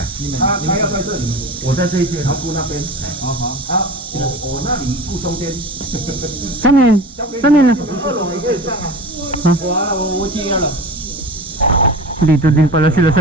他要在这里，我在这一间，他顾那边。我那里顾中间。 Saan yun? Saan yun? 二楼你可以上啊。我接了。 Dito din pala sila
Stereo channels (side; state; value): both; normal; correlation 0.34